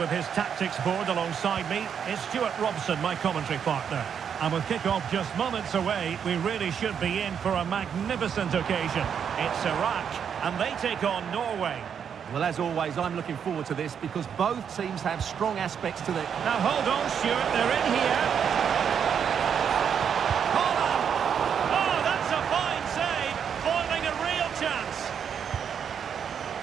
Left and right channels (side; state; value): left; quieter; 7.7 dB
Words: his tactics board alongside me is Stuart Robson, my commentary partner. And with kick-off just moments away, we really should be in for a magnificent occasion. It's Iraq, and they take on Norway. Well, as always, I'm looking forward to this because both teams have strong aspects to them. Now hold on, Stuart, they're in here.